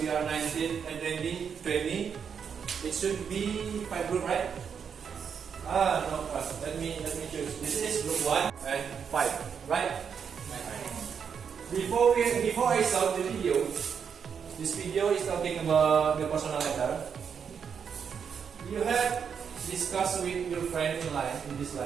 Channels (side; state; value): left; quieter; 7.0 dB